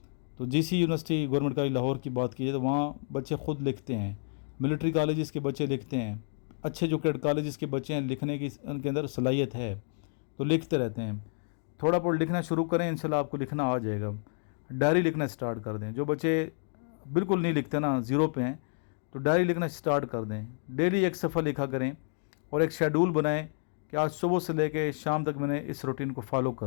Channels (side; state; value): right; silent; digital silence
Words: تو جی سی یونیورسٹی گورنمنٹ کالج لاہور کی بات کی جائے تو وہاں بچے خود لکھتے ہیں، ملٹری کالجز کے بچے لکھتے ہیں، اچھے جو کیڈ کالجز کے بچے ہیں لکھنے کی ان کے اندر صلاحیت ہے تو لکھتے رہتے ہیں۔ تھوڑا بہت لکھنا شروع کریں، انشاءاللہ آپ کو لکھنا آ جائے گا۔ ڈائری لکھنا اسٹارٹ کر دیں. جو بچے بالکل نہیں لکھتے نا، زیرو پہ ہیں، تو ڈائری لکھنا اسٹارٹ کر دیں. ڈیلی ایک صفحہ لکھا کریں اور ایک شیڈول بنائیں کہ آج صبح سے لے کے شام تک میں نے اس روٹین کو فالو